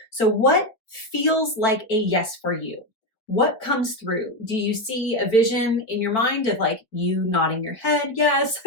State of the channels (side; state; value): right; late; 4.2 ms